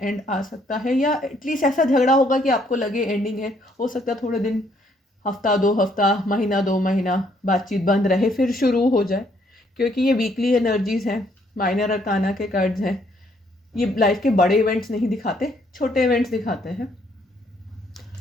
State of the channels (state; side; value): normal; both; correlation 0.68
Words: आ सकता है, या एटलीस्ट ऐसा झगड़ा होगा कि आपको लगे एंडिंग है। हो सकता है थोड़े दिन, हफ्ता 2 हफ्ता, महीना 2 महीना बातचीत बंद रहे, फिर शुरू हो जाए, क्योंकि ये वीकली एनर्जीज़ हैं, माइनर अरकाना के कार्ड्स हैं। ये लाइफ के बड़े इवेंट्स नहीं दिखाते, छोटे इवेंट्स दिखाते हैं।